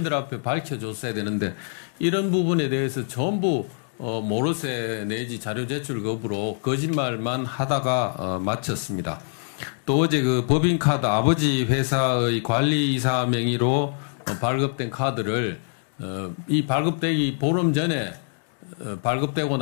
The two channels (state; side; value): silent; right; digital silence